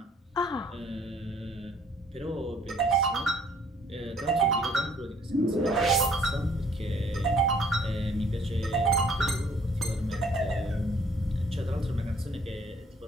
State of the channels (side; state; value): both; normal; correlation 0.60